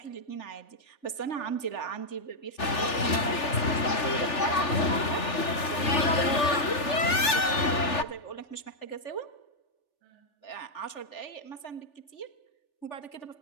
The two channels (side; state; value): right; late; 3.4 ms